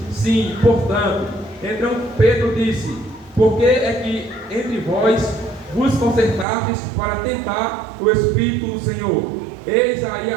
sim, portanto. Então Pedro disse: por que é que entre vós vos concertastes para tentar o Espírito do Senhor? Eis aí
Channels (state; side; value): drops out; left; at 6.5 s